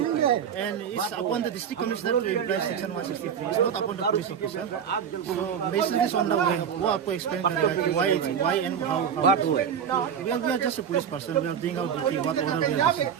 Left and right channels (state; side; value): quieter; left; 8.0 dB